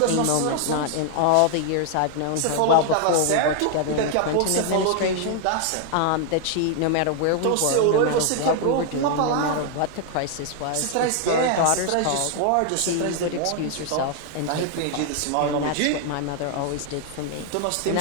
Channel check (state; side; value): different; both; correlation 0.00